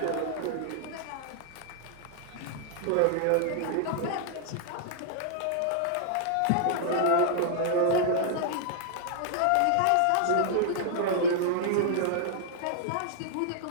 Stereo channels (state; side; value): different; both; correlation -0.01